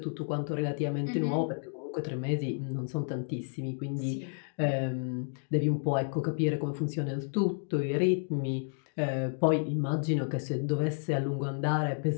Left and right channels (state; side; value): silent; right; digital silence